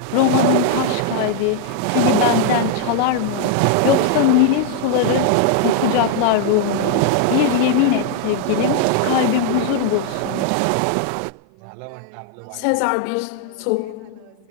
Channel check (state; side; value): different; both; correlation 0.00